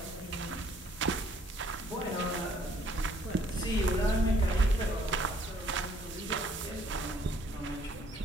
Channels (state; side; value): normal; both; correlation 0.63